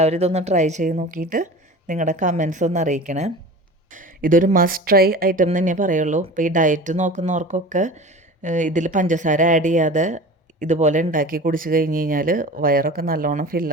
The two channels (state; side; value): normal; both; correlation 0.36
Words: ഇതൊന്ന് ട്രൈ ചെയ്ത് നോക്കിയിട്ട് നിങ്ങളുടെ കമൻസ് ഒന്ന് അറിയിക്കണേ. ഇതൊരു മസ്റ്റ് ട്രൈ ഐറ്റം തന്നെ പറയുള്ളൂ. ഇപ്പോൾ ഈ ഡയറ്റ് നോക്കുന്നവർക്കൊക്കെ ഇതിൽ പഞ്ചസാര ആഡ് ചെയ്യാതെ ഇതുപോലെ ഉണ്ടാക്കി കുടിച്ച് കഴിഞ്ഞ് കഴിഞ്ഞാൽ വയറൊക്കെ നല്ലോണം